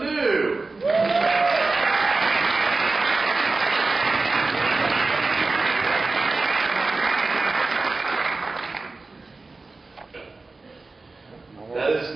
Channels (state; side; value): quieter; left; 3.6 dB